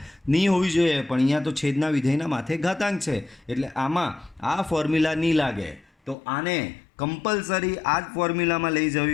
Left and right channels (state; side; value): drops out; right; at 6.2 s